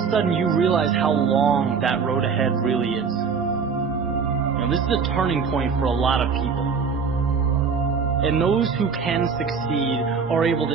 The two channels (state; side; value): quieter; left; 5.8 dB